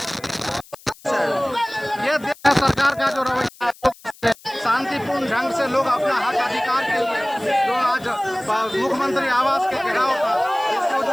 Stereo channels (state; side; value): noise; left; hiss, 23 dB below the sound